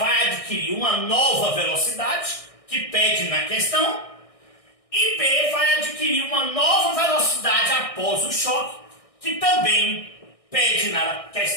adquirir uma nova velocidade, que pede na questão, e B vai adquirir uma nova velocidade após o choque, que também pede na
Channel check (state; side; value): late; right; 1.6 ms